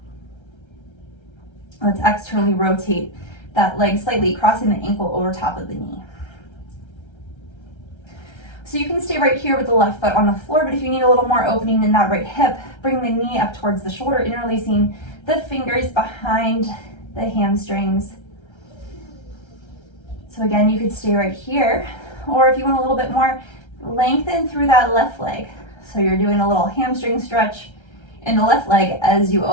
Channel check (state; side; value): late; right; 1.3 ms